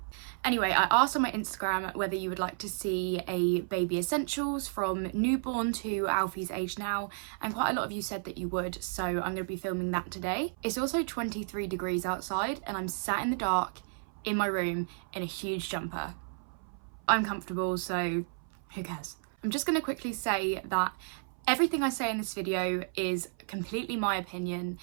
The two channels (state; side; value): silent; left; 56 dB below the other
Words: Anyway, I asked on my Instagram whether you would like to see a baby essentials from newborn to Alfie's age now, and quite a lot of you said that you would, so I'm going to be filming that today. It's also 23 degrees outside and I'm sat in the dark in my room in a huge jumper. I'm comfortable, so who cares? I'm just going to quickly say that everything I say in this video is completely my opinion.